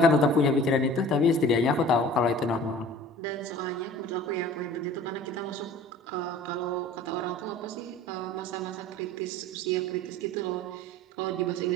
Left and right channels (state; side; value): normal; both; correlation 0.44